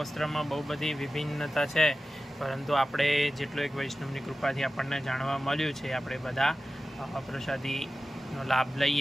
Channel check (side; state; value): both; normal; correlation 0.95